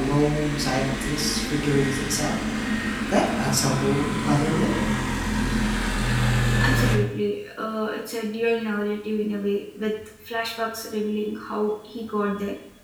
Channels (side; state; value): both; identical; correlation 1.00